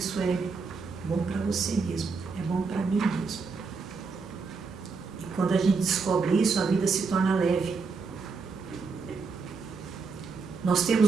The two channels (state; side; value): quieter; left; 4.7 dB